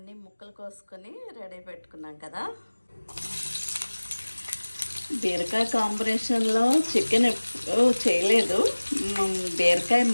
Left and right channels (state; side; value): inverted; both; correlation -1.00